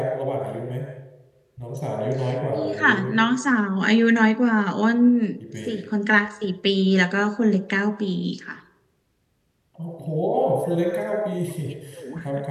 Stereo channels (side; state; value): both; identical; correlation 1.00